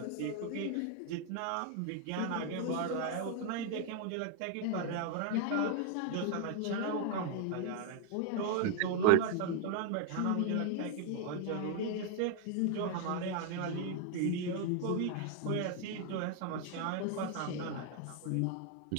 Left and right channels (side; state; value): both; different; correlation 0.00